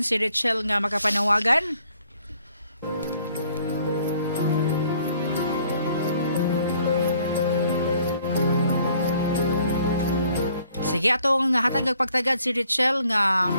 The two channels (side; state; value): both; inverted; correlation -0.63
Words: si Richelle nga makapanawagan. Sige, atong hatag pagtagad si Richelle nga